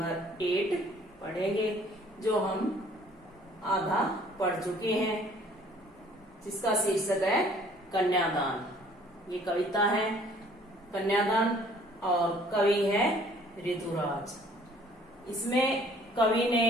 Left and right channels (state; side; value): normal; both; correlation 0.56